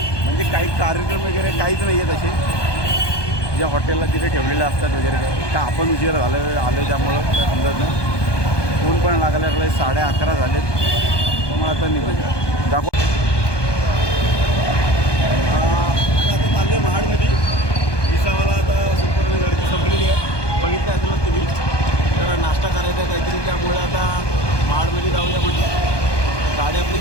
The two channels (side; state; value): right; late; 1.2 ms